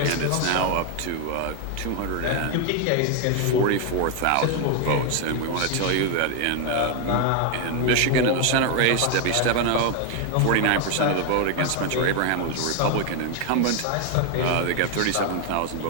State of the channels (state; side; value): different; both; correlation 0.01